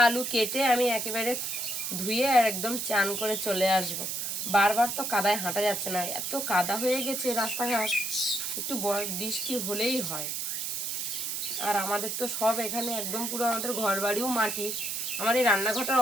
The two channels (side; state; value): right; noise; hiss, 2 dB below the sound